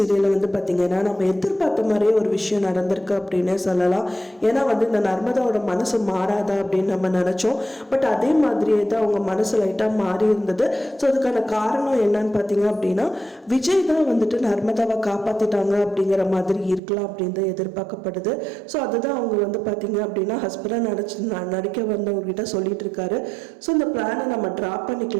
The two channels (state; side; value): drops out; left; at 16.8 s